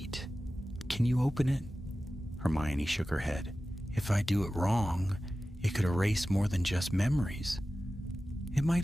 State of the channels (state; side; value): normal; both; correlation 0.95